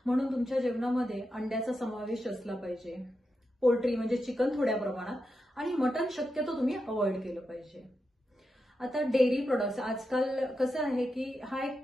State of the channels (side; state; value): both; normal; correlation 0.88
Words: म्हणून तुमच्या जेवणामध्ये अंड्याचा समावेश असला पाहिजे. पोल्ट्री म्हणजे चिकन थोड्या प्रमाणात आणि मटण शक्यतो तुम्ही अवॉइड केलं पाहिजे. आता डेअरी प्रोडक्ट्स, आजकाल कसं आहे की हा एक